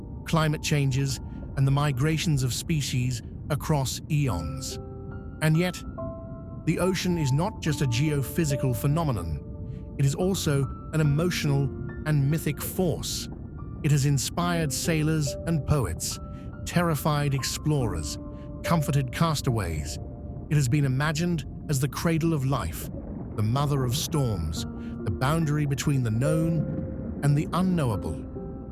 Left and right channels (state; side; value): identical; both; correlation 1.00